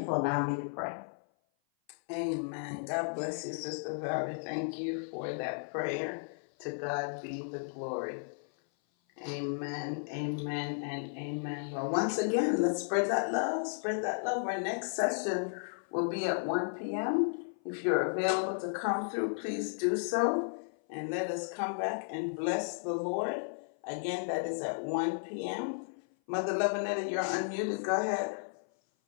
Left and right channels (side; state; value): right; silent; 55 dB below the other